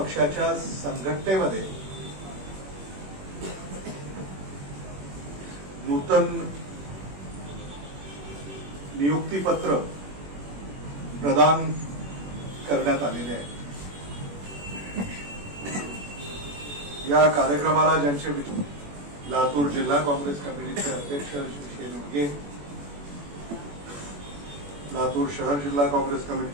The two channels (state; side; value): late; left; 21 ms